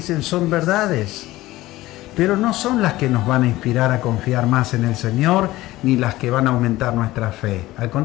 son verdades, pero no son las que nos van a inspirar a confiar más en el Señor, ni las que van a aumentar nuestra fe. Al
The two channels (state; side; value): quieter; right; 17.3 dB